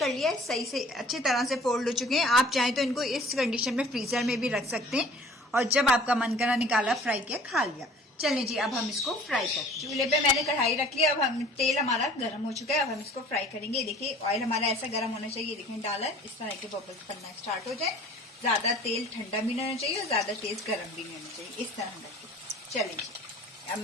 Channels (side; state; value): both; normal; correlation 0.49